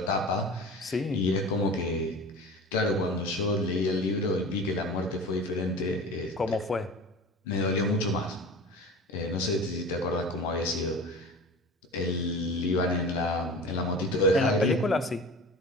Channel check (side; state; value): both; normal; correlation 0.36